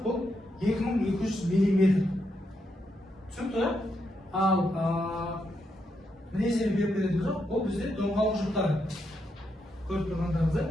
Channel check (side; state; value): both; normal; correlation 0.81